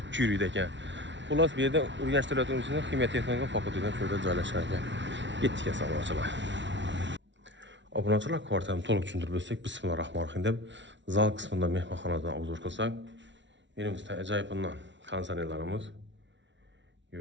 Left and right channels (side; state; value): left; late; 0.53 ms